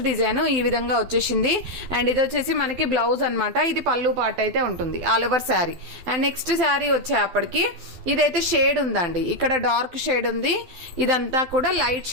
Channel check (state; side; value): late; left; 12 ms